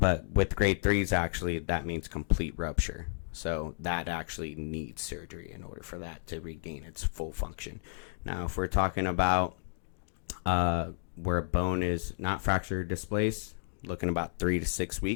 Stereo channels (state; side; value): silent; right; digital silence